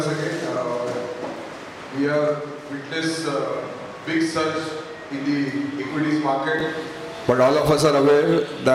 again. We have witnessed big surge in the equities market, but all of us are aware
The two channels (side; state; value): both; identical; correlation 1.00